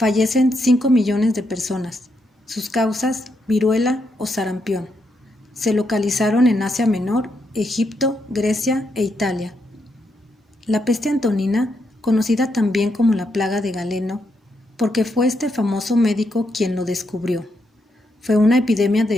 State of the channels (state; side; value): normal; both; correlation 0.80